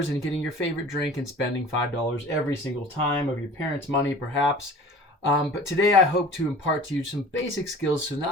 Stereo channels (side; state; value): both; normal; correlation 0.43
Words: and getting your favorite drink and spending $5 every single time of your parents' money, perhaps. But today I hope to impart to you some basic skills so not